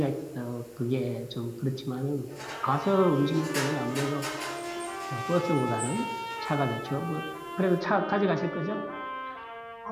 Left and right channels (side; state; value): both; identical; correlation 1.00